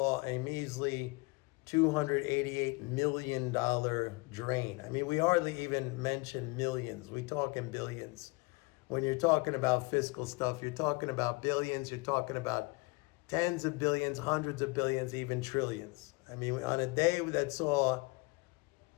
a measly $288 million drain. I mean, we hardly even mention millions. We talk in billions. When you're talking about fiscal stuff, you're talking about billions, you're talking about tens of billions, hundreds of billions, even trillions. I mean, on a day that saw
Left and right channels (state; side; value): quieter; right; 26.5 dB